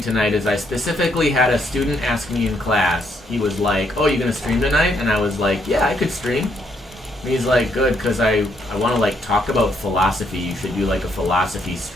tonight is I specifically had a student ask me in class. He was like, oh, you gonna stream tonight? And I was like, yeah, I could stream. And he's like, good, because I want to, like, talk about philosophy. You should do, like, a philosophy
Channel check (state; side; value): normal; both; correlation 0.73